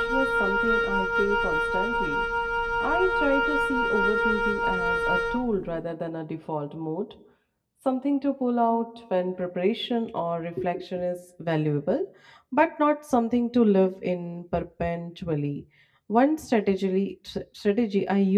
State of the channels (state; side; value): identical; both; correlation 1.00